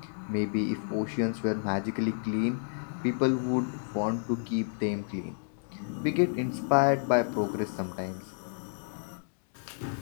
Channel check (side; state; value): right; silent; digital silence